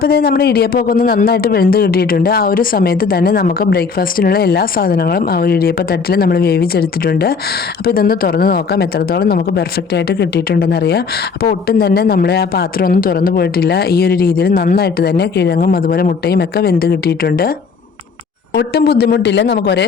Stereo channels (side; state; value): right; quieter; 5.3 dB